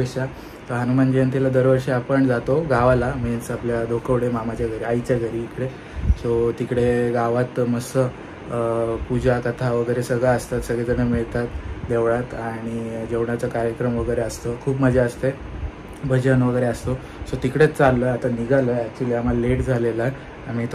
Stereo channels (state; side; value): identical; both; correlation 1.00